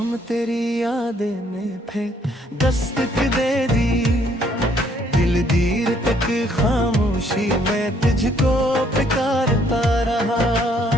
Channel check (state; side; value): normal; both; correlation 0.66